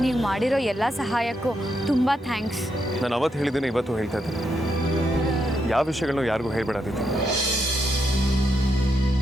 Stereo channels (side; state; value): both; normal; correlation 0.81